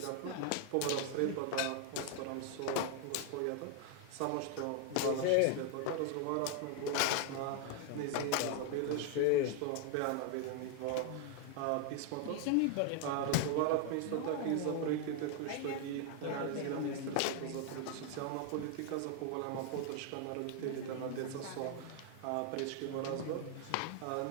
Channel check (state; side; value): different; both; correlation 0.00